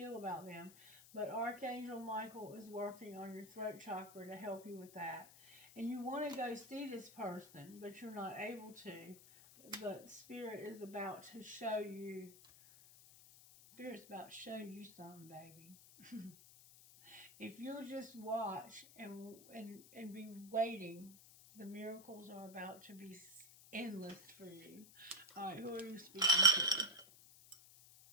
about them. But Archangel Michael is working on your throat chakra to help you with that. And you want to go see this person, but you're not able to. But Spirit is about to show you. Spirit's about to show you something, baby. If you'll just watch and be waiting, the miracles are about to be endless for you. All right, who are you speaking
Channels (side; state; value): left; noise; hiss, 20 dB below the sound